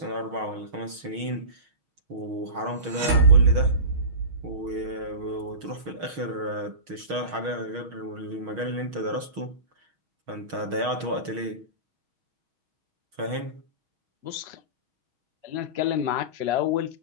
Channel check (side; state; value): left; late; 6.3 ms